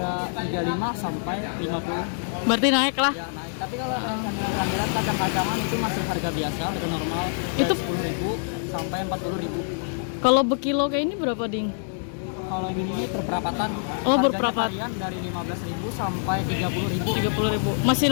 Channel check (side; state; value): right; silent; digital silence